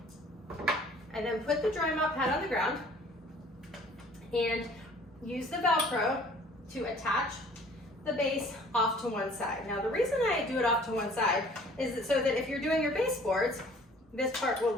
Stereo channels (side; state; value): both; normal; correlation 0.53